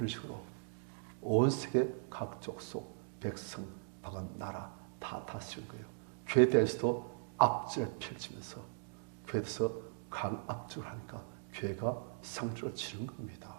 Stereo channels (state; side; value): silent; left; digital silence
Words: 식으로 온 세계 각 족속, 백성, 방은 나라 다 다스린 거예요. 교회에 대해서도 압제를 펼치면서 교회에 대해서 강압적으로 하니까 교회가 상주로 치는 겁니다.